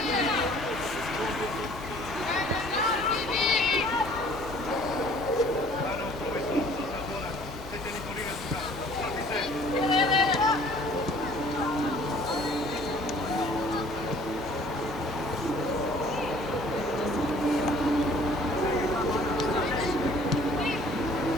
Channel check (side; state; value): both; normal; correlation 0.54